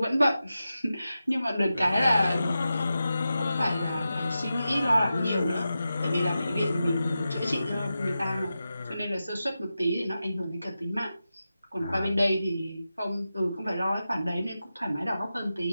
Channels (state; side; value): inverted; both; correlation -0.91